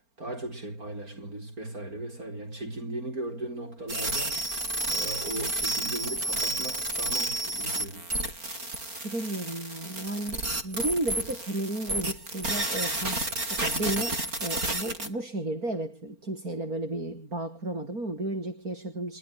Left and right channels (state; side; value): late; left; 4.4 ms